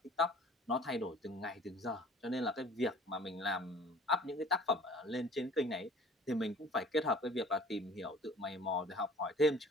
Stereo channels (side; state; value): both; normal; correlation 0.48